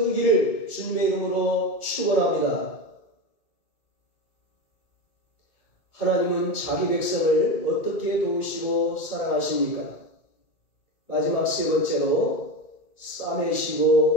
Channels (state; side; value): late; right; 2.3 ms